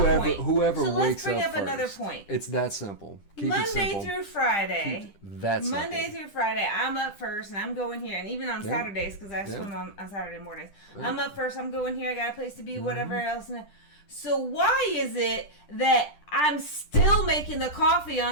point. Whoever so wakes up let's bring up first. another point. It's that simple. Keep Monday it simple. through Friday. Monday through Friday, I'm up first and I'm going here. And even on Saturdays, because I swim on Saturday mornings. I'm up first, I'm going here, I got a place to be, whatever else. So why is it that I'm still making the coffee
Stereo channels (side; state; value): right; late; 10 ms